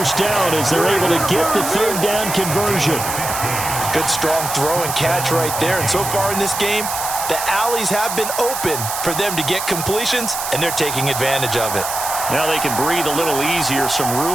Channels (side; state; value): right; noise; hiss, 5 dB below the sound